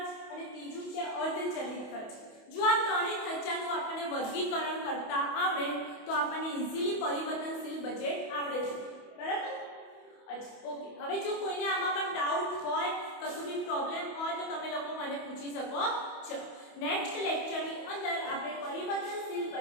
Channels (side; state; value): right; late; 28 ms